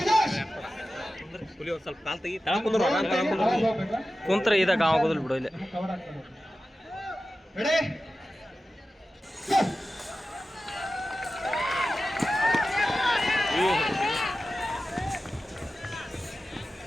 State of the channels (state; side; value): normal; both; correlation 0.94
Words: ಸ್ವಲ್ಪ ಕಾಲ್ ತೆಗಿ ಕುಂತ್ರ ಇದಾಗ ಆಗೋದಿಲ್ಲ ಬಿಡು. ಇಲ್ಲಿ ರೆಡಿ,